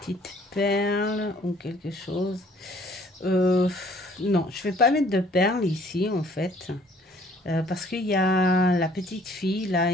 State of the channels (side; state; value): both; normal; correlation 0.58